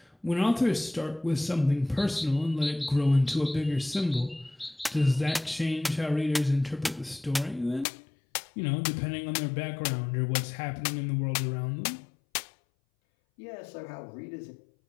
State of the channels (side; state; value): right; drops out; at 7.9 s